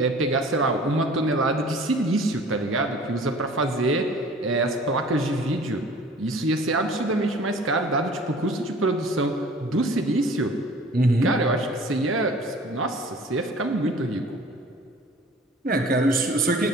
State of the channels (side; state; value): both; normal; correlation 0.47